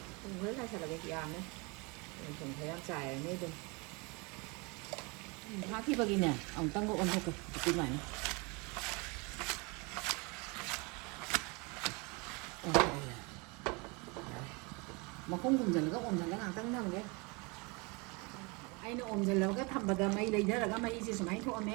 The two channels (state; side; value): quieter; left; 29.0 dB